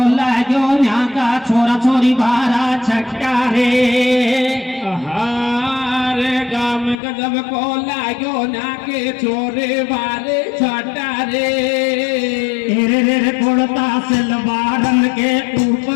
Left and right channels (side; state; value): right; drops out; at 7.0 s